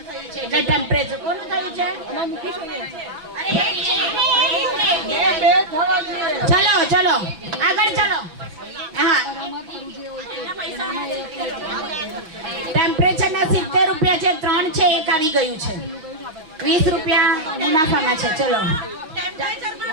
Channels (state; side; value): late; left; 6.2 ms